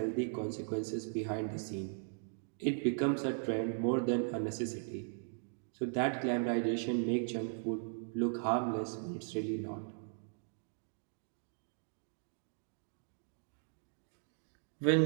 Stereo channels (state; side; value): silent; left; digital silence